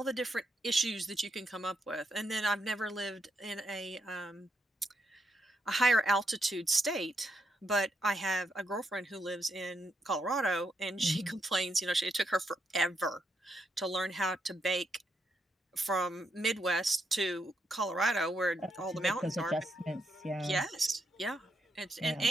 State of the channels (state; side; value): normal; both; correlation 0.79